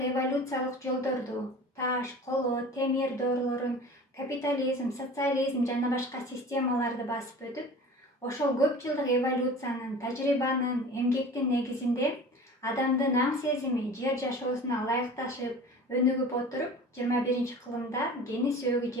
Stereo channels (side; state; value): both; normal; correlation 0.40